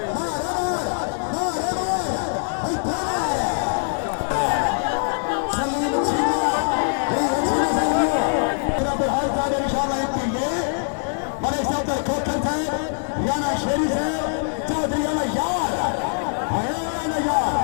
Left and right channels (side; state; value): right; silent; 55 dB below the other